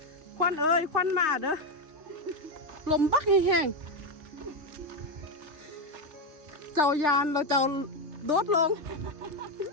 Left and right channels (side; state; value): left; late; 2.6 ms